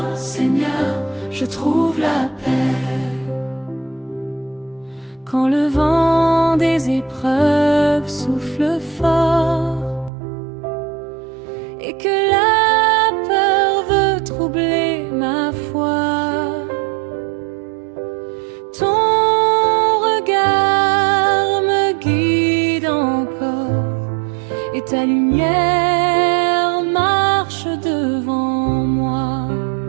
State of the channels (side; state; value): left; drops out; at 10.1 s